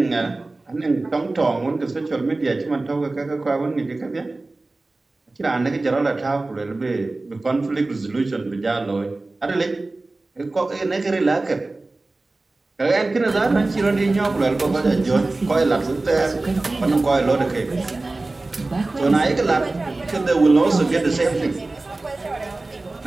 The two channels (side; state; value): left; quieter; 3.2 dB